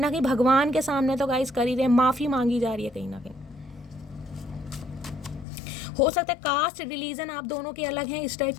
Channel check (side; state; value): right; drops out; at 5.5 s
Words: कहीं भगवान के सामने तो गाइस कर ही रहे हैं, माफ़ी मांगी जा रही है कहीं ना कहीं। हो सकता है कास्ट रिलीजन आप दोनों के अलग हैं, इस टाइप